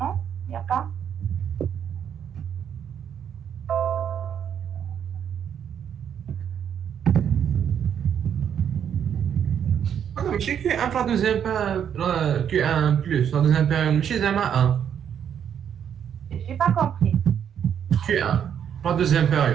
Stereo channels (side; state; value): left; quieter; 8.6 dB